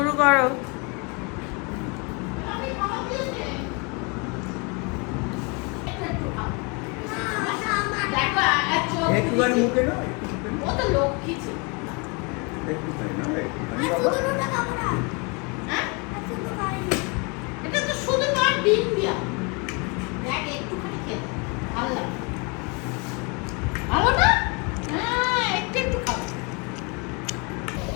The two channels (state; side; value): quieter; right; 31.4 dB